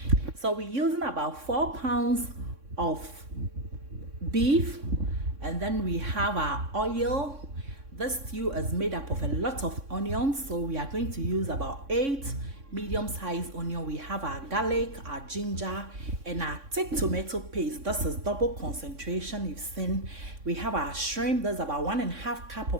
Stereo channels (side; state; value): left; late; 3.6 ms